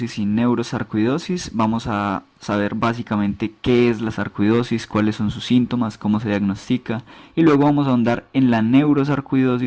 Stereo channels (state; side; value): identical; both; correlation 1.00